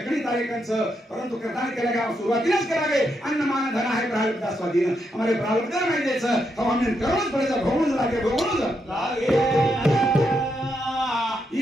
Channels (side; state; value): both; normal; correlation 0.81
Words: तारेकंच परंतु करता केलेगा सुरुवातीलाच करावे अन्न मान धन आहे प्रारब्ध स्वाधीन हमारे प्रारब्ध नाही द्यायचं हमने कर्मच पडायचं भोगून लागे